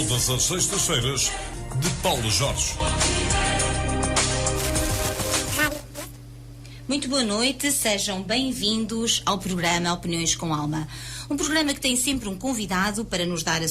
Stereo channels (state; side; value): identical; both; correlation 1.00